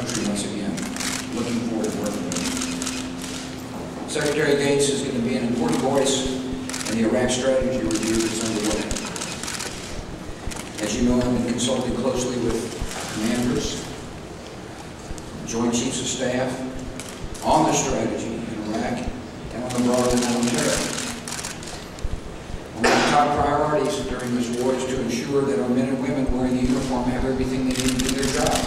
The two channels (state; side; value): identical; both; correlation 1.00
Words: once again. Looking forward to working with him. Secretary Gates is going to be an important voice in the Iraq strategy review that's underway. As you know, I've been consulting closely with commanders, Joint Chiefs of Staff on the strategy in Iraq and on the broader war on terror. One of the top priorities during this war is to ensure that our men and women wearing the uniform have everything they need to do their job.